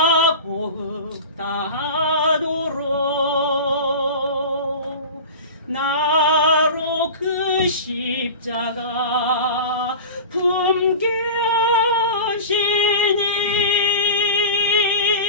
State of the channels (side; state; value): both; inverted; correlation -0.32